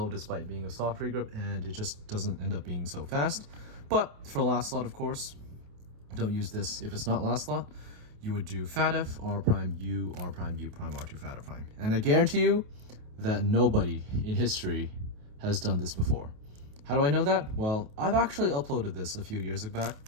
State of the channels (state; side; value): late; left; 28 ms